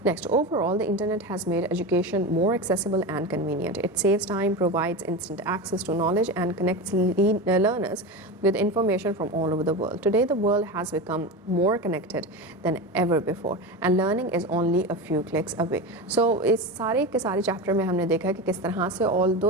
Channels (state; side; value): normal; both; correlation 0.22